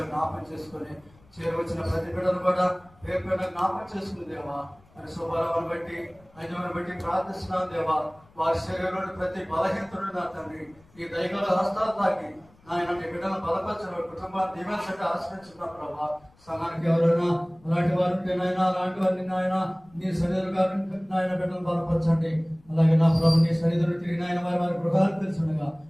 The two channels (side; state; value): left; noise; rumble, 29 dB below the sound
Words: జ్ఞాపకం చేసుకుని చేరవచ్చిన ప్రతి బిడ్డను కూడా రేపు జ్ఞాపకం చేసుకుని దేవా అని స్వభావాన్ని బట్టి ఐదవని బట్టి ప్రార్థిస్తున్నాను. దేవా వారి శరీరంలోని ప్రతి బలహీనతను నా తండ్రి ఈ దైగల హస్తాలు తాకి నాయన నీ బిడ్డలను బలపరచడం, కుటుంబాన్ని దీవెనసంటే ఆశ్రయించుకున్న ప్రభా. సంఘానికి ఎవరైనా అలాంటి వారు ఉంటే నాయన, అలాంటి వారిని నాయన నీ సన్నిధులుగా నాయన బిడ్డలను బలపరచండి. అలాగే నా ప్రభు నీ సన్నిధులు తిరిగి నాయన వారి గృహాలు తెలుసుండగా